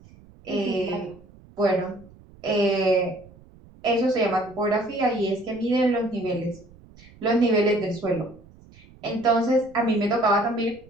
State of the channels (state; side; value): noise; right; rumble, 24 dB below the sound